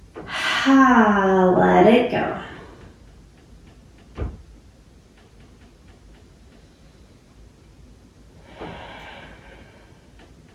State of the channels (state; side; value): identical; both; correlation 1.00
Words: Let it go.